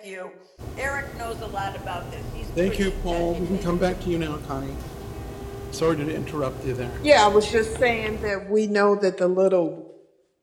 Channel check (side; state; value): both; identical; correlation 1.00